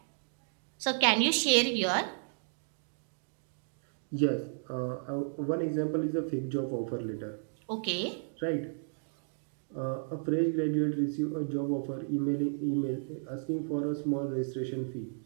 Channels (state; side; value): silent; left; digital silence